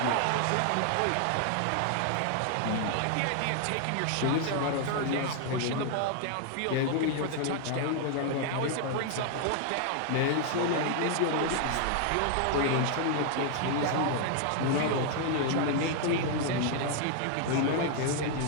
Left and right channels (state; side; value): different; both; correlation 0.00